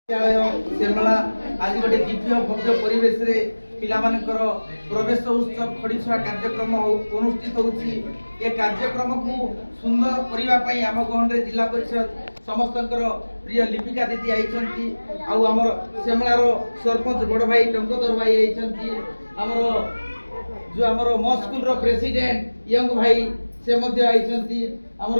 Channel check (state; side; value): inverted; both; correlation -1.00